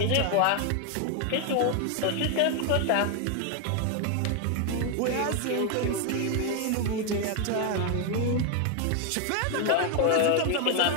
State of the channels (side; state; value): both; different; correlation 0.01